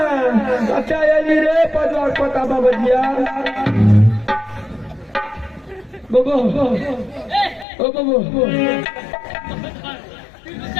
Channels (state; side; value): drops out; right; at 7.7 s